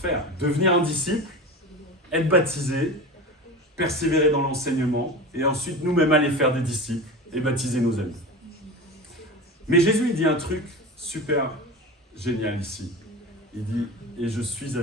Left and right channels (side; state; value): both; normal; correlation 0.28